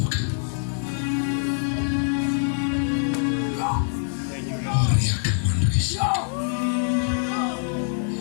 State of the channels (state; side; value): silent; right; 62 dB below the other